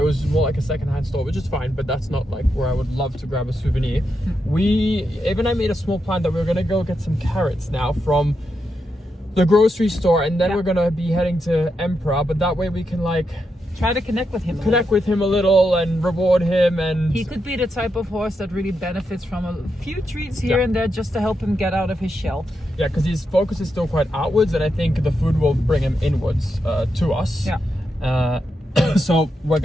was more like a secondhand store, which is fine, but that's not like where I would love to grab a souvenir. Ava and I made a small plan that we were gonna go get some carrots now from the grocery store, and then we're gonna be heading to Emperor, but that way we can like Try to connect with him. connect with him a little and reward him, and He could be the type of horse that really benefits from a few treats here Yeah. and there just to help him get out of his shell. yeah, because his focus is still quite outwards, and I think the food will bring him inwards to us. Yeah. So we're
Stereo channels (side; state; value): both; normal; correlation 0.85